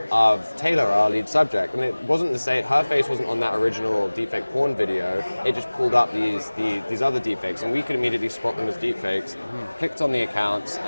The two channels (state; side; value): inverted; both; correlation -1.00